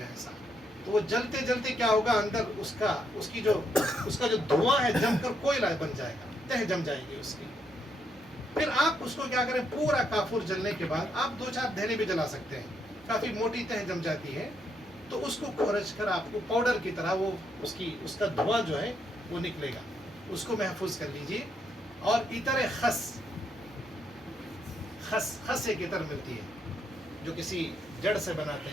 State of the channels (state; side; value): normal; both; correlation 0.76